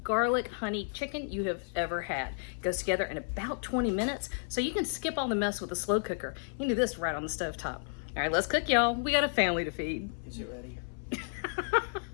garlic honey chicken you have ever had. It goes together in about 20 minutes, so you can skip all the mess with a slow cooker. You can do this right on the stove top. All right, let's cook, y'all. We got a family to feed. Is it ready?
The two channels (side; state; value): right; silent; 56 dB below the other